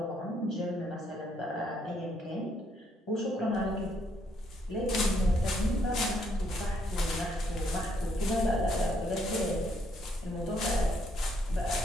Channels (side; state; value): both; normal; correlation 0.72